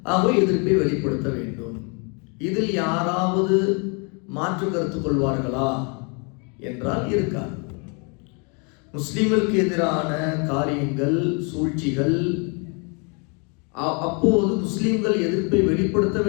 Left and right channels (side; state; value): right; quieter; 35.0 dB